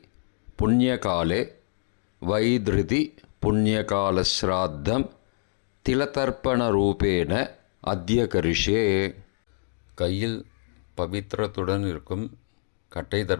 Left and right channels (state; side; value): silent; right; digital silence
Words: புண்ணியகாலே வைத்ருதி புண்ணியகாலஸ்ராத்தம் திலதர்ப்பணரூபேண அத்ய கரிஷ்யே. கையில் பவித்திரத்துடன் இருக்கும் கட்டை